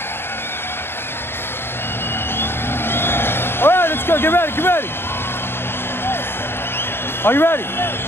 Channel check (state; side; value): late; right; 0.11 ms